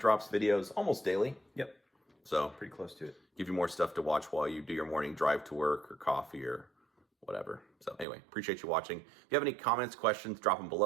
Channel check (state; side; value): drops out; left; at 8.1 s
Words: videos almost daily. Yep. So Pretty close to it. give you more stuff to watch while you do your morning drive to work or coffee or whatever. So anyway, appreciate you watching. If you have any comments, questions, drop them